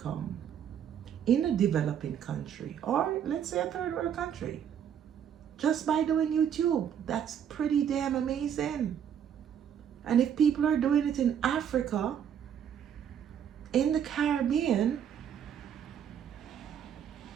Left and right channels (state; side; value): quieter; left; 8.8 dB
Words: in a developing country, or let's say a third world country, just by doing YouTube, that's pretty damn amazing. And if people are doing it in Africa, in the Caribbean,